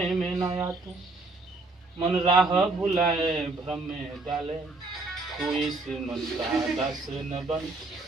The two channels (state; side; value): quieter; left; 3.3 dB